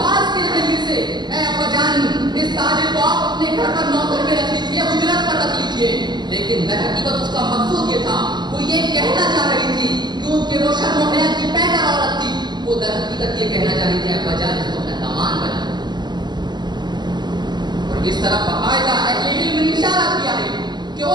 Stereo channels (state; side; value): late; left; 0.21 ms